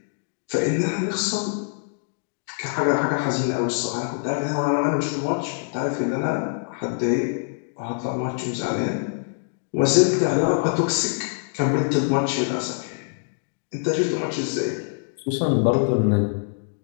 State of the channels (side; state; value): right; silent; digital silence